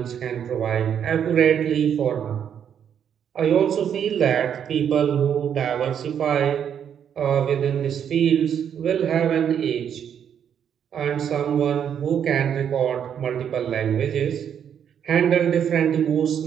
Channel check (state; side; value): quieter; left; 8.6 dB